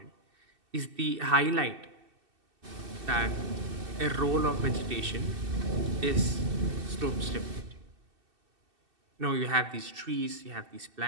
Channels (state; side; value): late; left; 2.7 ms